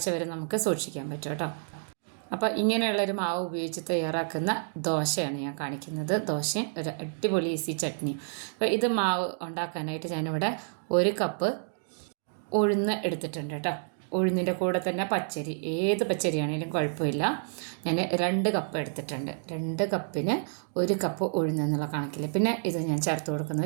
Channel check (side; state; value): left; silent; digital silence